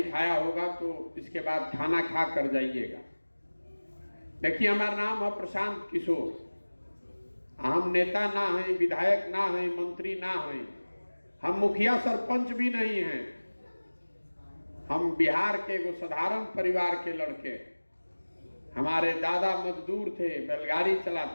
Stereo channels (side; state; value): both; inverted; correlation -1.00